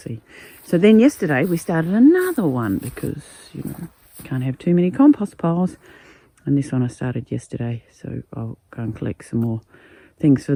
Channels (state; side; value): identical; both; correlation 1.00